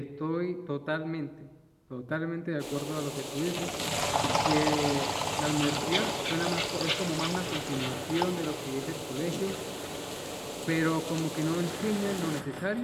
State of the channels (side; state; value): both; identical; correlation 1.00